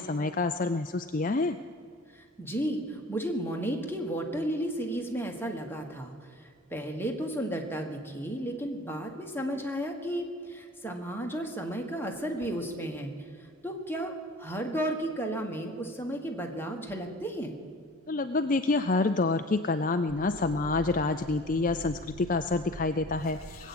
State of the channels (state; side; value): normal; both; correlation 0.44